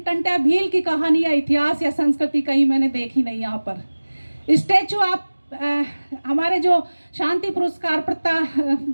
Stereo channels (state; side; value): inverted; both; correlation -1.00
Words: टंट्या भील की कहानी या इतिहास या संस्कृति कहीं मैंने देखी नहीं। यहाँ पर स्टैचू आप हमारे जो शांति पुरस्कार